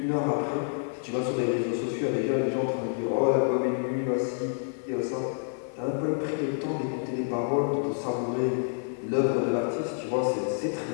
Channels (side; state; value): right; silent; digital silence